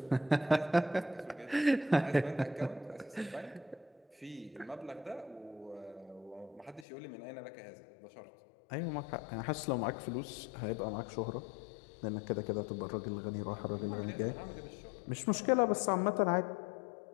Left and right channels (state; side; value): drops out; right; at 6.9 s